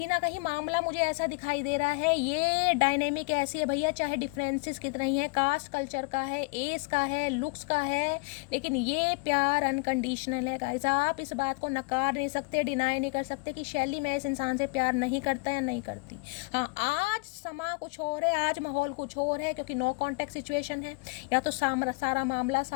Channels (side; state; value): right; quieter; 28.0 dB